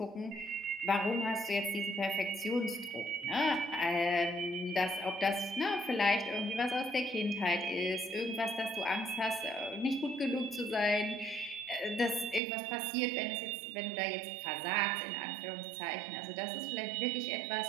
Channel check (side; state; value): left; drops out; at 12.4 s